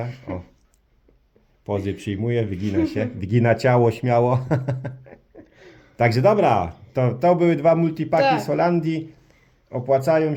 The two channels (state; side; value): identical; both; correlation 1.00